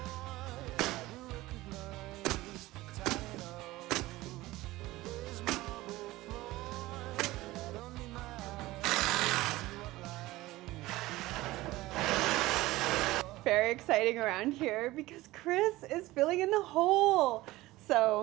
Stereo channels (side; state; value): left; quieter; 18.3 dB